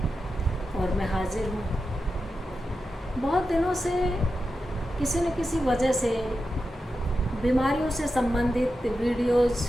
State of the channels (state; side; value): normal; both; correlation 0.90